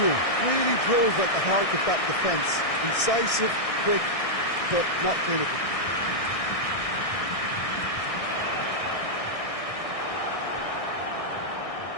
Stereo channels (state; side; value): late; right; 1.6 ms